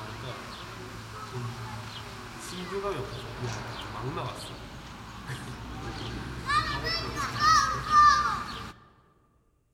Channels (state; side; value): identical; both; correlation 1.00